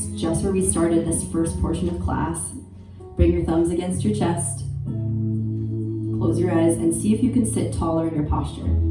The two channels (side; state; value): both; identical; correlation 1.00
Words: just where we started this first portion of class. Bring your thumbs against your chest. Close your eyes and see if you can sit taller in your posture.